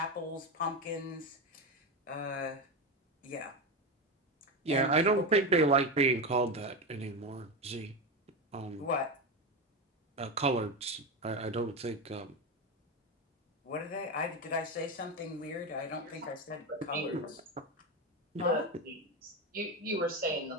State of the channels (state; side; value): normal; both; correlation 0.16